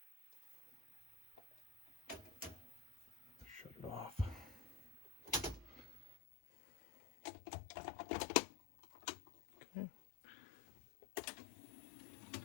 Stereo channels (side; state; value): right; drops out; at 6.2 s